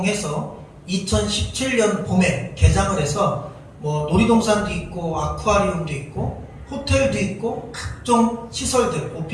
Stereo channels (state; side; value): identical; both; correlation 1.00